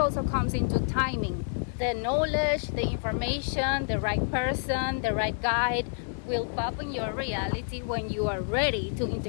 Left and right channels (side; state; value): right; silent; 56 dB below the other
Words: comes into timing. The knowledge, the information, the right person, the right guide, will pop in your reality when you are ready to